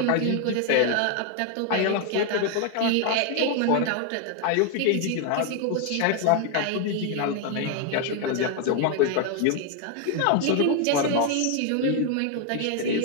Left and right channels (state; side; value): different; both; correlation 0.01